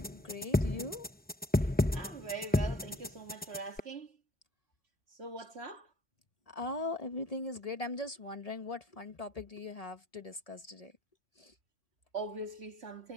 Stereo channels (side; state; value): both; normal; correlation 0.57